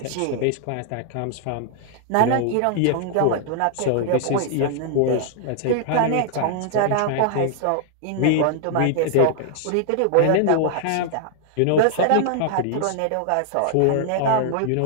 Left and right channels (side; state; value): both; different; correlation 0.00